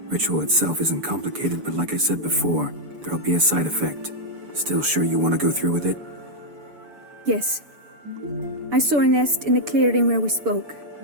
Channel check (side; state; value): left; late; 6.9 ms